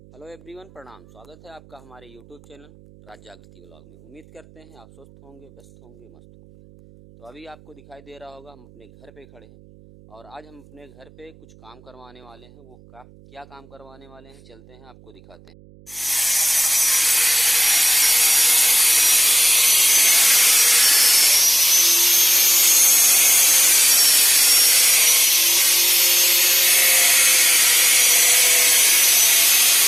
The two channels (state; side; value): noise; right; hum, 27 dB below the sound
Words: Hello everyone, प्रणाम। स्वागत है आपका हमारे यूट्यूब चैनल राज जागृति व्लॉग में। उम्मीद करते हैं आप स्वस्थ होंगे, व्यस्त होंगे, मस्त होंगे। तो अभी आपको दिखाई दे रहा होगा हम अपने घर पे खड़े हैं और आज हम अपने घर पे कुछ काम करवाने वाले हैं। वो क्या काम करवाने वाले हैं, चलते हैं आपको दिखाते हैं।